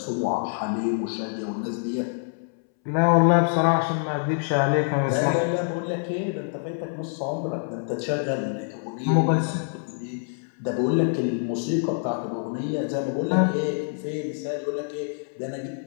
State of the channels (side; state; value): right; silent; 61 dB below the other